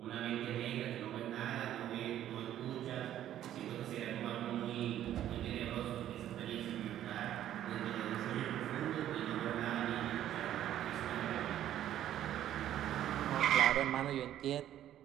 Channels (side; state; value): left; quieter; 11.8 dB